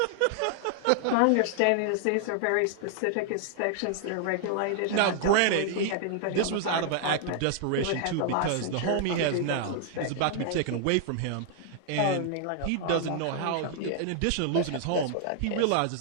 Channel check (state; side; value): different; both; correlation 0.00